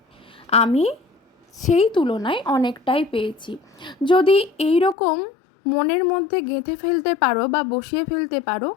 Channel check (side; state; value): right; drops out; at 5.0 s